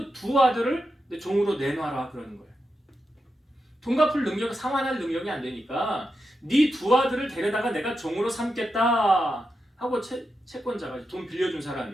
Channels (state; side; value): normal; both; correlation 0.88